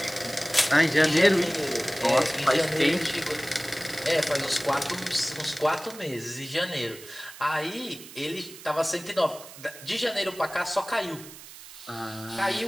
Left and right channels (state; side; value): noise; right; hiss, 16 dB below the sound